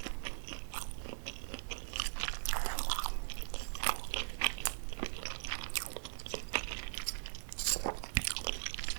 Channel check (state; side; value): silent; left; 51 dB below the other